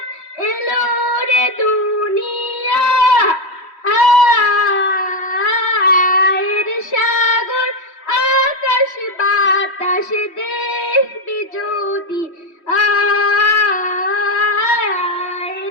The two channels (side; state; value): right; late; 3.1 ms